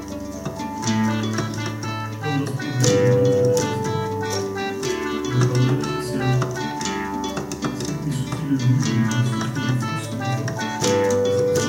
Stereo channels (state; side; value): identical; both; correlation 1.00